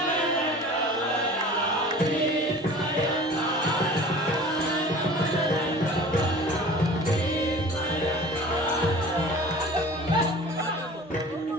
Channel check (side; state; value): both; normal; correlation 0.42